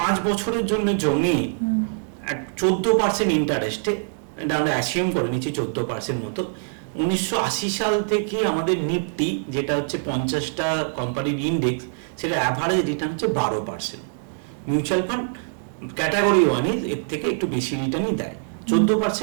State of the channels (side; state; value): left; silent; digital silence